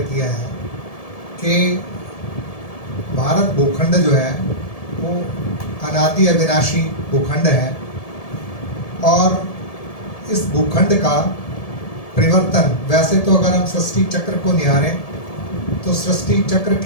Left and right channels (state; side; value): late; right; 1.7 ms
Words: किया है कि भारत भूखंड जो है वो अनादि अविनाशी भूखंड है, और इस भूखंड का परिवर्तन, वैसे तो अगर हम सृष्टि चक्र को निहारें तो सृष्टि चक्र